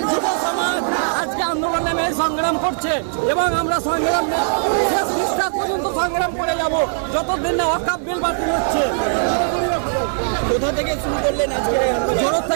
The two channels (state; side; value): silent; left; 56 dB below the other